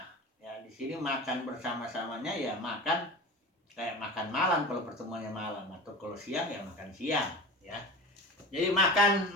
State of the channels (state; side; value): normal; both; correlation 0.32